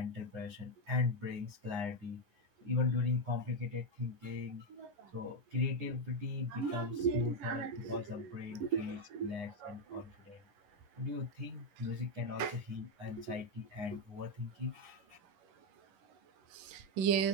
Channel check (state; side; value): late; left; 9.7 ms